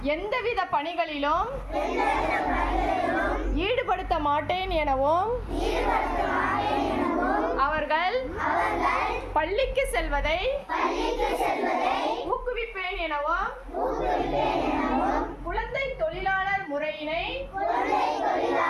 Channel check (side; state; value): both; identical; correlation 1.00